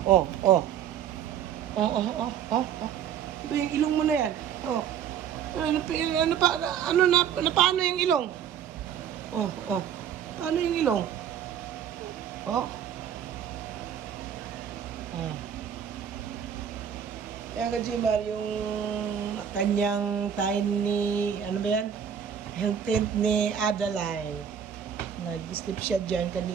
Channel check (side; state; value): left; quieter; 8.6 dB